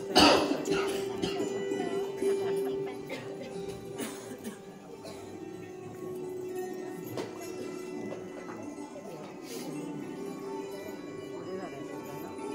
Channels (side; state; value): both; identical; correlation 1.00